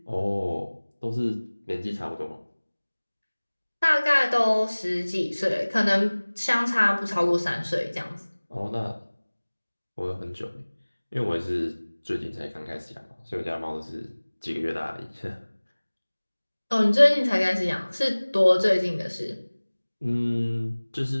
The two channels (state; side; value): inverted; both; correlation -1.00